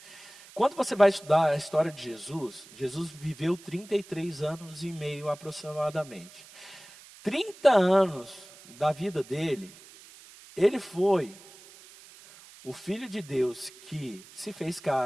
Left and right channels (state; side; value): noise; right; hiss, 21 dB below the sound